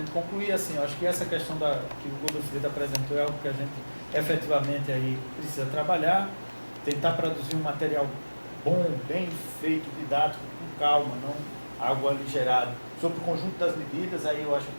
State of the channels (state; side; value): inverted; both; correlation -1.00